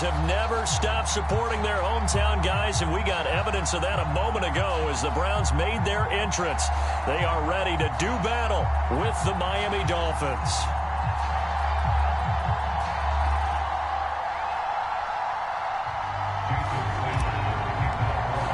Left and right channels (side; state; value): both; identical; correlation 1.00